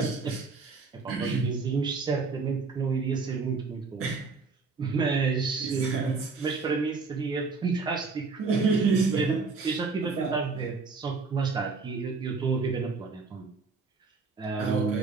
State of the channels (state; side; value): quieter; left; 4.4 dB